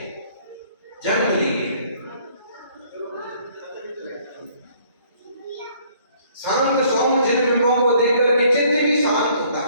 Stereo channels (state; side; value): inverted; both; correlation -0.61